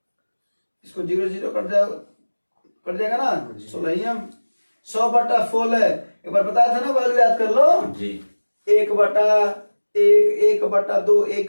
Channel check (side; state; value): both; inverted; correlation -1.00